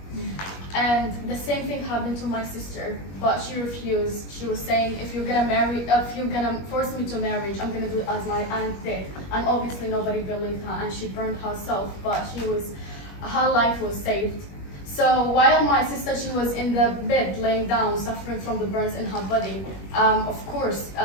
And the same thing happened to my sister, but she refused. She was saying, if you're gonna force me to marriage, I'm gonna do it as my aunt did. And obviously nobody believed her, and she burned herself, but her life was saved. So while my sister, she was in the bed laying down, suffering from the burns in her body, of course,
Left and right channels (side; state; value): right; late; 21 ms